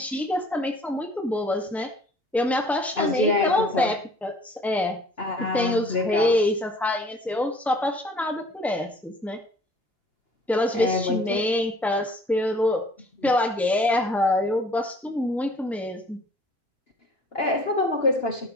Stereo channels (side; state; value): both; normal; correlation 0.53